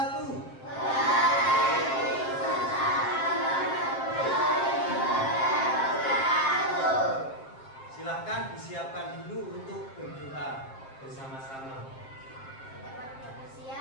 Silahkan disiapkan dulu untuk berdoa bersama-sama. Dapat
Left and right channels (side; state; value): right; late; 7.5 ms